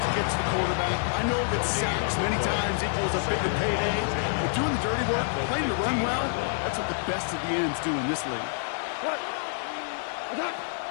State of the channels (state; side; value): silent; right; digital silence